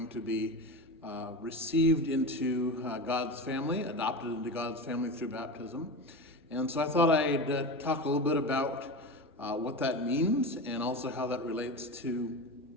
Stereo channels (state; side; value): normal; both; correlation 0.25